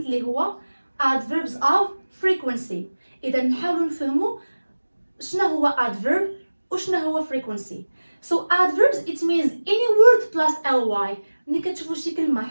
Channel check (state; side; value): inverted; both; correlation -1.00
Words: اللي هو adverbs of frequency. إذا نحاولوا نفهموا شنو هو adverb وشنو هو frequency. So adverbs it means any word plus ly. ملي كتشوفوا شي كلمة